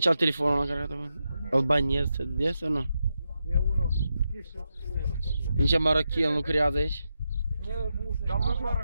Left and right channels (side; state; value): both; inverted; correlation -0.86